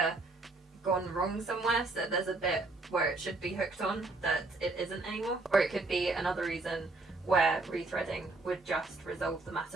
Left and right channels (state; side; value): quieter; left; 3.3 dB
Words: gone wrong somewhere, so there's a bit where it should be hooked on that it isn't anymore, or it could be another reason where rethreading would just resolve the